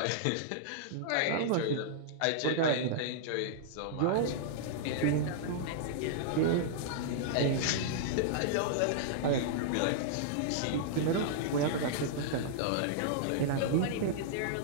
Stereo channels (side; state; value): both; different; correlation -0.02